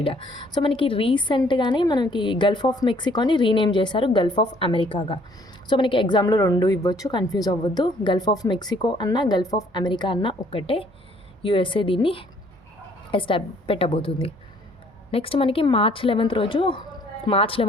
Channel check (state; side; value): normal; both; correlation 0.61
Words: So మనకి రీసెంట్గానే మనకి గల్ఫ్ ఆఫ్ మెక్సికోని రీనేమ్ చేశారు గల్ఫ్ ఆఫ్ అమెరికాగా. సో మనకి ఎగ్జామ్లో 2 ఇవ్వచ్చు, కన్ఫ్యూజ్ అవ్వద్దు. గల్ఫ్ ఆఫ్ మెక్సికో అన్న గల్ఫ్ ఆఫ్ అమెరికా అన్న ఒక్కటే. యుఎస్ఏ దీన్ని పెట్టబోతుంది. నెక్స్ట్ మనకి మార్చ్ 11th